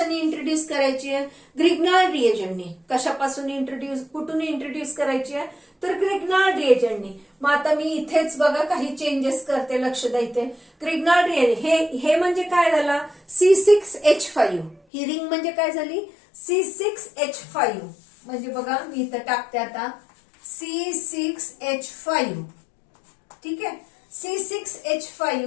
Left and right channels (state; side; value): drops out; right; at 14.8 s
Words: इंट्रोड्यूस करायची आहे, ग्रिग्नार्ड रिएजंटने. कशापासून इंट्रोड्यूस, कुठून इंट्रोड्यूस करायची आहे, तर ग्रिग्नार्ड रिएजंटने. मग आता मी इथेच बघा काही चेंजेस करते, लक्ष द्या इथे. ग्रिग्नार्ड रिएजंट हे म्हणजे काय झाला, C6H5. ही रिंग म्हणजे काय झाली, C6H5. म्हणजे बघा मी इथं टाकते आता C6H5. ठीक आहे,